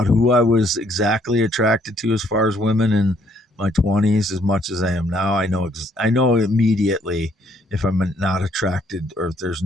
who I was exactly attracted to as far as women in my 20s as much as I am now. I know immediately if I'm not attracted or if there's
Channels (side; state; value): both; normal; correlation 0.67